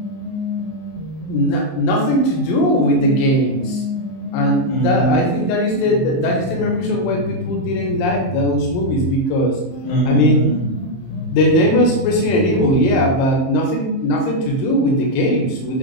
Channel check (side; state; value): right; late; 23 ms